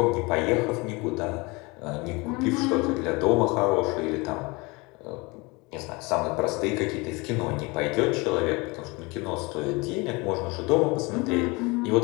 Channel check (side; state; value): right; quieter; 25.9 dB